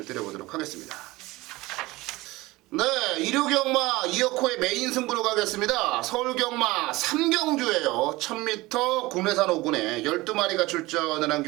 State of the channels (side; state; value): left; quieter; 20.4 dB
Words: 드려보도록 하겠습니다. 네, 일요경마 2억호의 메인 승부로 가겠습니다. 서울경마 3경주예요. 1000m 국내산 5군에 12마리가 출전을 한